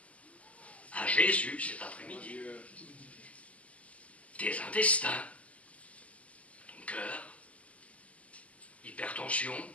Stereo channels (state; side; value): late; right; 0.068 ms